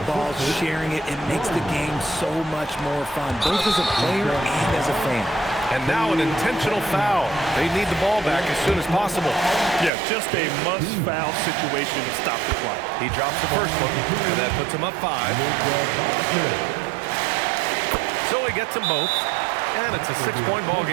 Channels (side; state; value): left; drops out; at 9.9 s